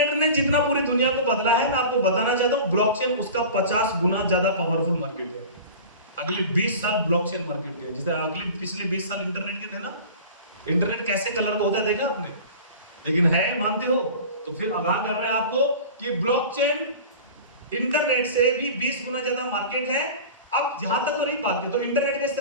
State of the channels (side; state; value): both; inverted; correlation -0.37